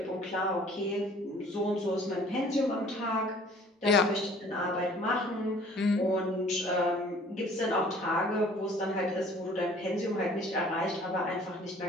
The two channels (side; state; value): both; normal; correlation 0.53